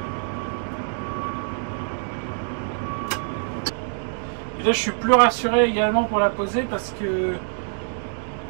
Et là, je suis plus rassuré également pour la poser parce que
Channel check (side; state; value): left; silent; digital silence